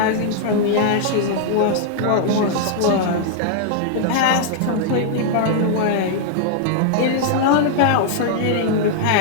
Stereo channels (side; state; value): both; different; correlation -0.01